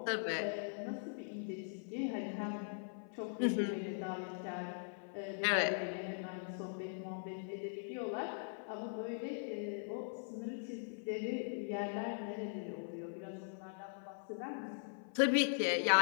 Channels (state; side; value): silent; right; 51 dB below the other